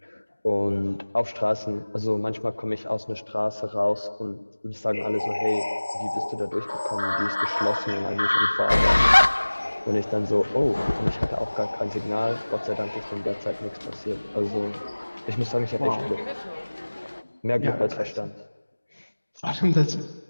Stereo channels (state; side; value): inverted; both; correlation -1.00